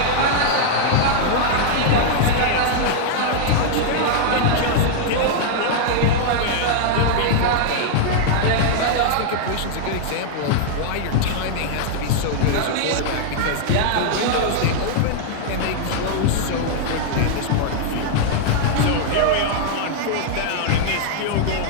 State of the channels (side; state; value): both; different; correlation -0.01